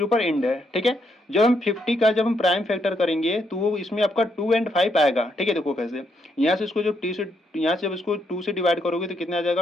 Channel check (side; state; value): both; normal; correlation 0.76